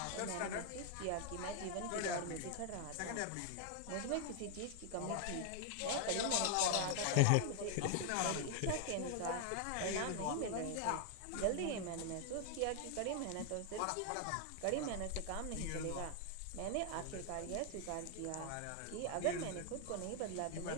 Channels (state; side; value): different; both; correlation 0.00